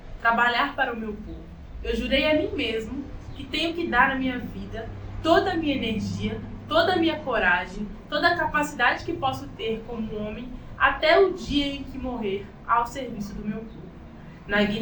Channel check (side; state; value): both; identical; correlation 1.00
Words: trabalhar para o meu povo. Eu jurei a mim mesmo que tenho que dar a minha vida, toda a minha energia, toda a minha coragem, toda a capacidade que posso ter como homem, até o dia em que morrer, ao serviço do meu povo, na